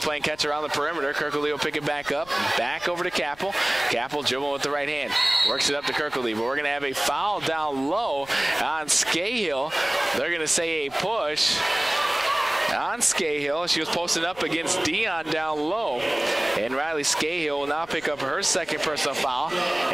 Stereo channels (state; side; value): noise; left; rumble, 24 dB below the sound